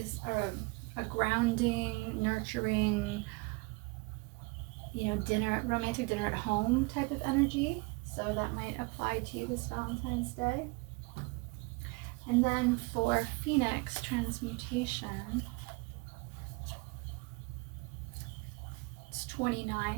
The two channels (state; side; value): quieter; left; 27.6 dB